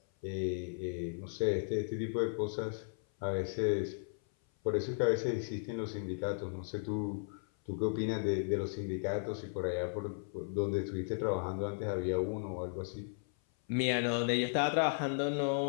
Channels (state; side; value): silent; right; 54 dB below the other